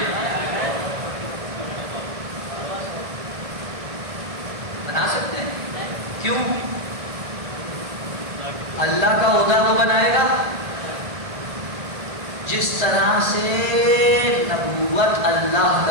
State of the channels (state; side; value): late; left; 1.7 ms